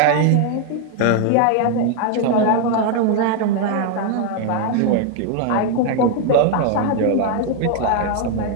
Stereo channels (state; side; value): different; both; correlation 0.00